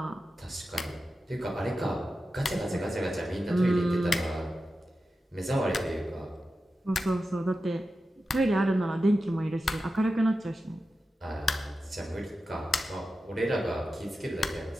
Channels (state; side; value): normal; both; correlation 0.92